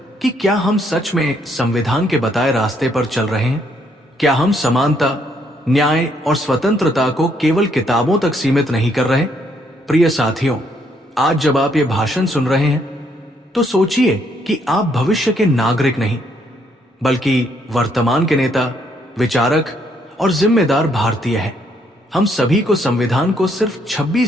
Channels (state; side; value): normal; both; correlation 0.71